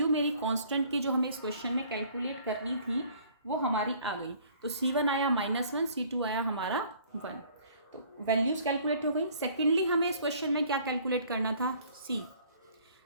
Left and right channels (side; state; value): both; inverted; correlation -0.56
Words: मेरी कांस्टेंट की जो हमें इस क्वेश्चन में कैलकुलेट करनी थी वो हमारी आ गई। तो C1 आया -1, C2 आया हमारा 1, तो वैल्यूज कैलकुलेट हो गई। सेकेंडली हमें इस क्वेश्चन में क्या कैलकुलेट करना था,